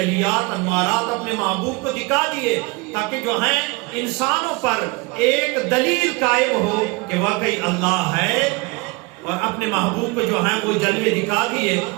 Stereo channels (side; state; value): left; quieter; 25.8 dB